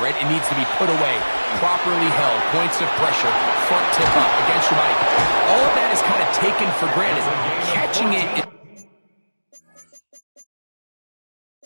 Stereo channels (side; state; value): both; inverted; correlation -1.00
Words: It needs to be put away, properly held, points of pressure, front tip up against your body. All of that is kind of taken for granted. Catching it